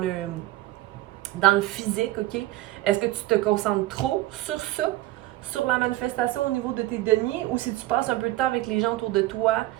le physique, OK? Est-ce que tu te concentres trop sur ça, sur la manifestation au niveau de tes deniers, ou si tu passes un peu de temps avec les gens autour de toi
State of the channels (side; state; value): left; quieter; 16.8 dB